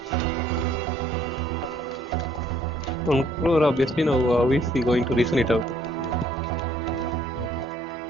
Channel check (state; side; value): normal; both; correlation 0.64